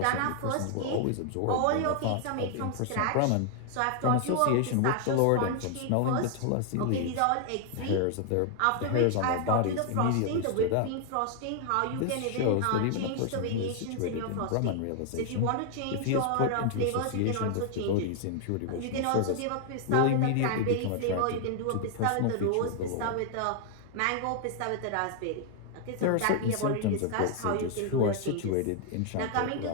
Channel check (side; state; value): both; different; correlation 0.00